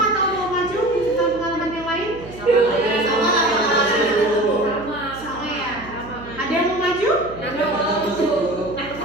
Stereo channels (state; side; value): noise; right; hum, 16 dB below the sound